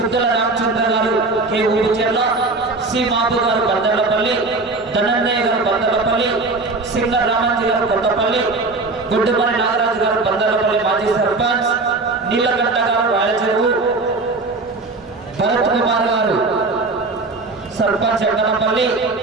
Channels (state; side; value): quieter; left; 3.5 dB